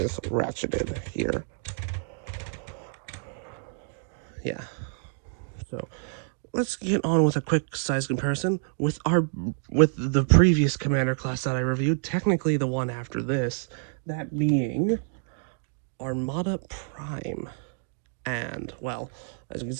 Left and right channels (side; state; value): left; silent; 57 dB below the other